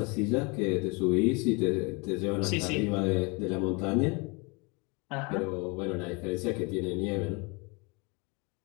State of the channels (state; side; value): quieter; right; 29.6 dB